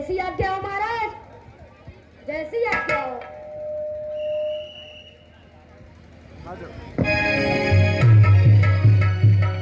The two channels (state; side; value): identical; both; correlation 1.00